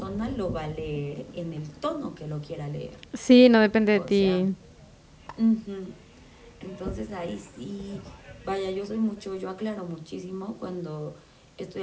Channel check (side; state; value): both; identical; correlation 1.00